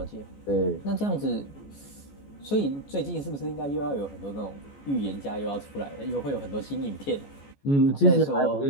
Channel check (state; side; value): late; right; 14 ms